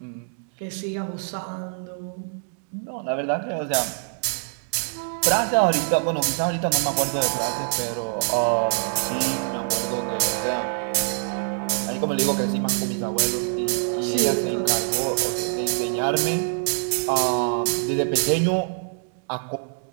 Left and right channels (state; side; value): silent; left; 60 dB below the other